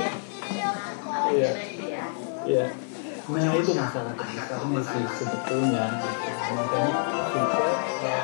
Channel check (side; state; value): right; silent; 55 dB below the other